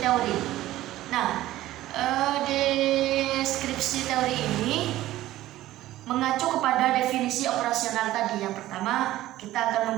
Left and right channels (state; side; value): quieter; left; 15.2 dB